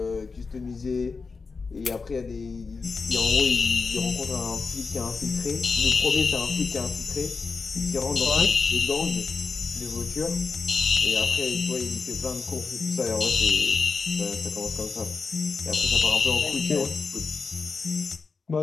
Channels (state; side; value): quieter; right; 4.6 dB